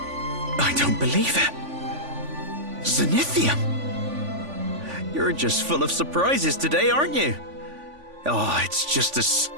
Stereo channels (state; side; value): late; left; 3.5 ms